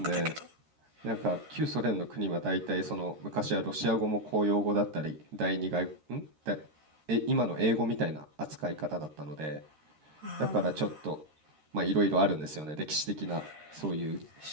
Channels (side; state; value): left; late; 13 ms